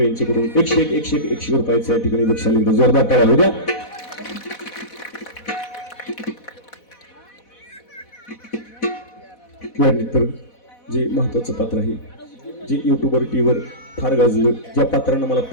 यांच्याकडून 101 रुपयाचा या ठिकाणी बक्षीस लिहिलं. जोरदार टाळ्या होऊ द्या. यानंतर जे महत्वाचं पात्र आहे, जे युट्यूबवर टीव्हीवर फार गाजलं, ज्या पात्रानं मला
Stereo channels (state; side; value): late; right; 4.1 ms